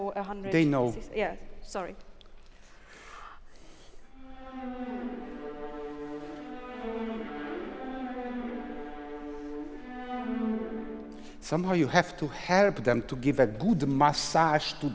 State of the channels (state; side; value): identical; both; correlation 1.00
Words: 100. They know. Yeah, sorry. Somehow you have to help them to give a good massage to